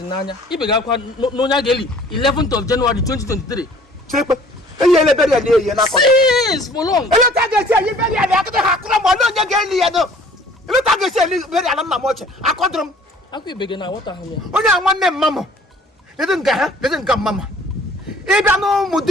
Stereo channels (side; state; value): both; normal; correlation 0.53